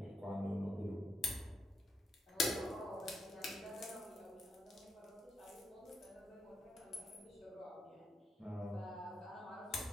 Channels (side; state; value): both; normal; correlation 0.80